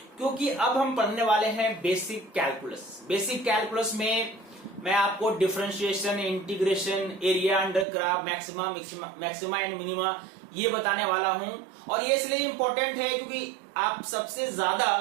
क्योंकि अब हम पढ़ने वाले हैं बेसिक कैलकुलस। बेसिक कैलकुलस में मैं आपको differentiation, integration, area under curve, maxima and minima ये बताने वाला हूं। और ये इसलिए इंपॉर्टेंट है क्योंकि आप सबसे ज्यादा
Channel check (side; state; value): left; drops out; at 7.9 s